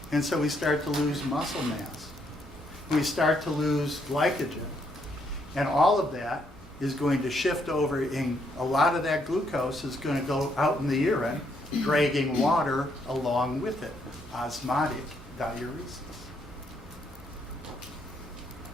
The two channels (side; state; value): both; normal; correlation 0.73